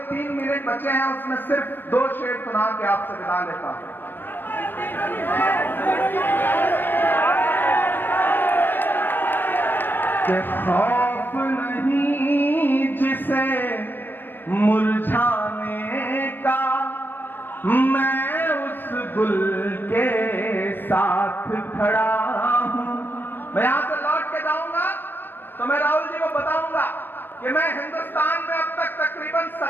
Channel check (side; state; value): right; late; 0.094 ms